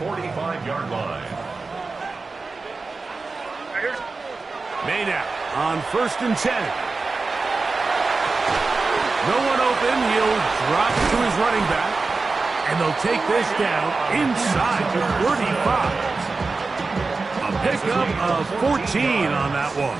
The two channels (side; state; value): left; quieter; 4.0 dB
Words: 45-yard line. May now on 1st and 10. No one open. He'll drop it to his running back. And they'll take this down inside the 35. A pickup of 14 on that one.